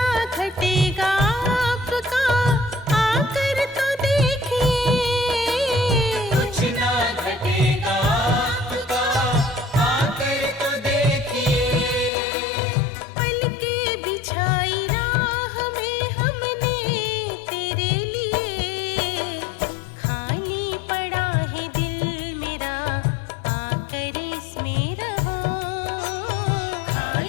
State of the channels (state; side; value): drops out; right; at 12.1 s